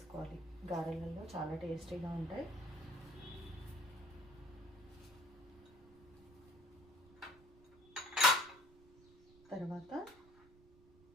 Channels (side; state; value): right; noise; rumble, 25 dB below the sound